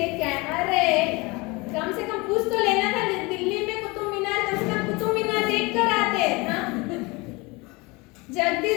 के आया। अरे कम से कम पूछ तो लेना था, दिल्ली में कुतुब मीनार, कम से कम कुतुब मीनार देख कर आते। हाँ,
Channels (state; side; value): quieter; right; 25.2 dB